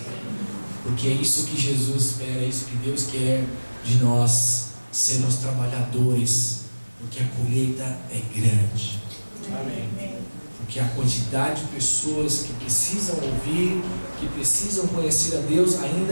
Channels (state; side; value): inverted; both; correlation -1.00